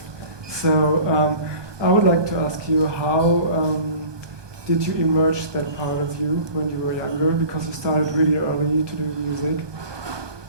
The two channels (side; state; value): left; late; 1.2 ms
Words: So I would like to ask you, how did you emerge that part of you when you were younger? Because you started really early to do music,